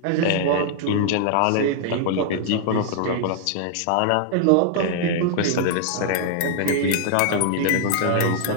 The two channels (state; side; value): different; both; correlation -0.01